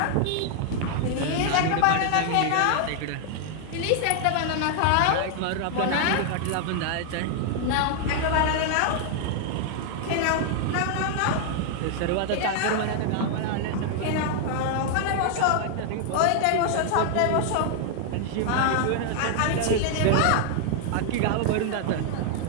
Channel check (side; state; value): both; different; correlation 0.00